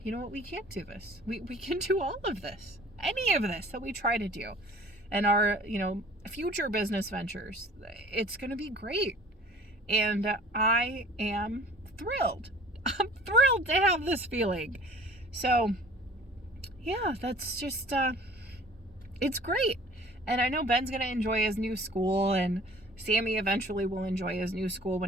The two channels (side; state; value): both; normal; correlation 0.48